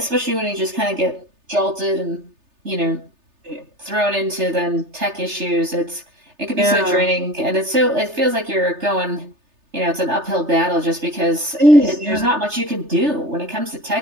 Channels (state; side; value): late; left; 3.3 ms